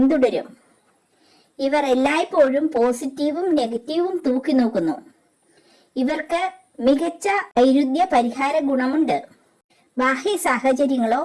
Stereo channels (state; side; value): identical; both; correlation 1.00